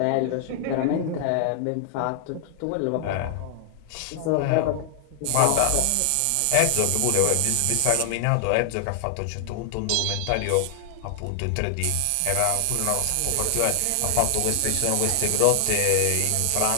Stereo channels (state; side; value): different; both; correlation 0.00